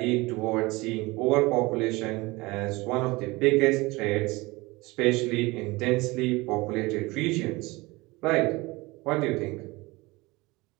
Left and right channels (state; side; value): quieter; left; 22.7 dB